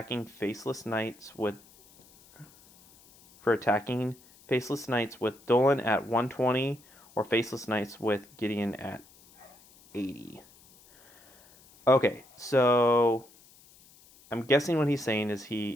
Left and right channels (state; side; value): noise; left; hiss, 26 dB below the sound